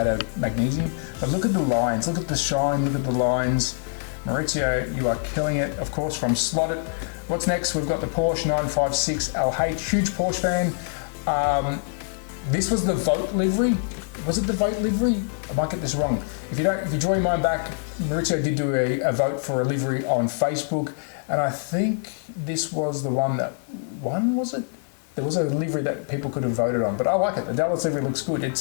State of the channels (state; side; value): silent; right; digital silence